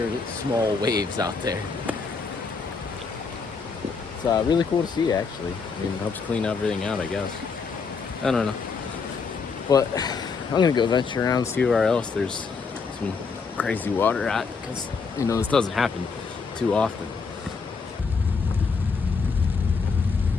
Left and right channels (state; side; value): quieter; right; 5.0 dB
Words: are small waves out there. It's really cool to see, actually. I mean, it helps clean everything out, I guess. I don't know. But I'm gonna go venture around and see where else there's some crazy water at, because this doesn't happen too often.